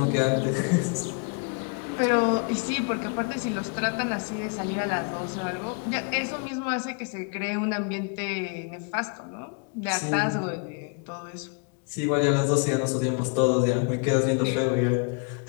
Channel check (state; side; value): quieter; right; 36.1 dB